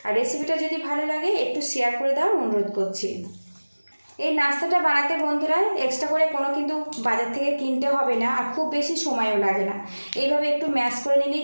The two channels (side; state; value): both; inverted; correlation -1.00